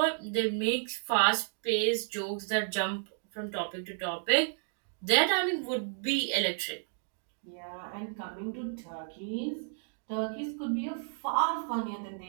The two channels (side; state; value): left; silent; digital silence